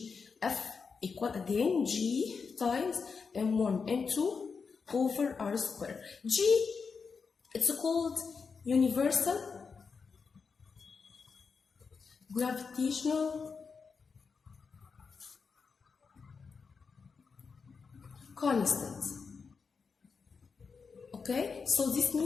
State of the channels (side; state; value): right; quieter; 5.3 dB